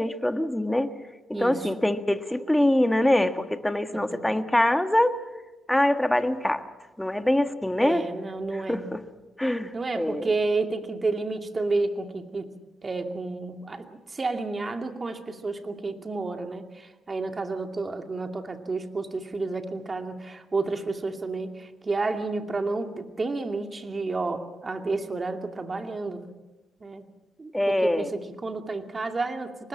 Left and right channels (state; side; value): normal; both; correlation 0.94